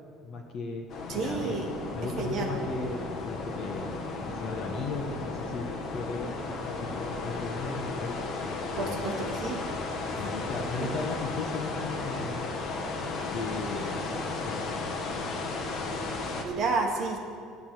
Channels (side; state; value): both; normal; correlation 0.49